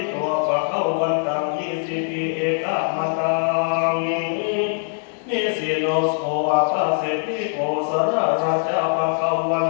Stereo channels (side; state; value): right; silent; digital silence